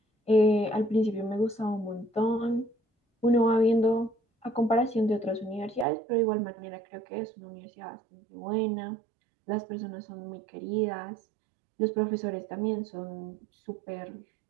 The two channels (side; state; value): left; drops out; at 5.9 s